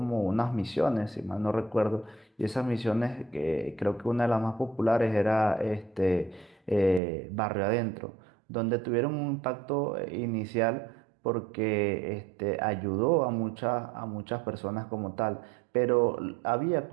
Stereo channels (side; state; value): left; drops out; at 7.0 s